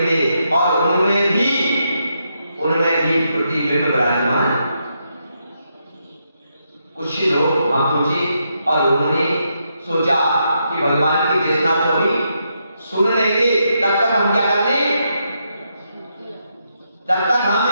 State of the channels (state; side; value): inverted; both; correlation -0.81